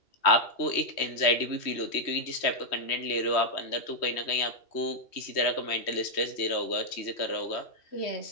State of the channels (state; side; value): late; right; 3.1 ms